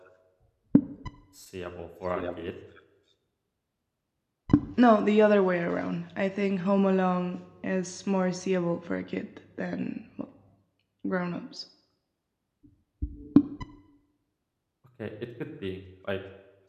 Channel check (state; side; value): identical; both; correlation 1.00